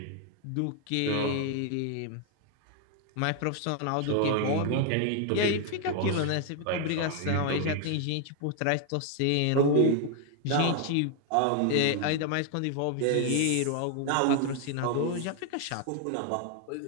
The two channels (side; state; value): both; different; correlation 0.01